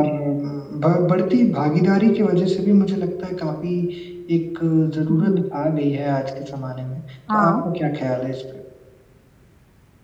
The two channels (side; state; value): both; identical; correlation 1.00